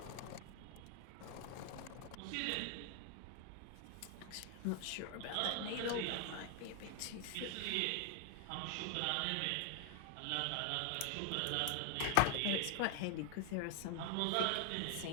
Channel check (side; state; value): both; different; correlation 0.00